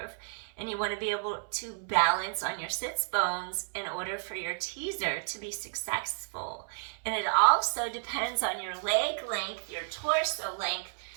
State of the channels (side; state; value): left; silent; 57 dB below the other